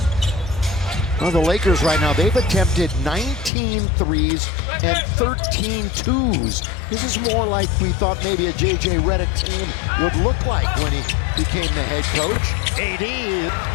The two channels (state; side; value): drops out; right; at 3.5 s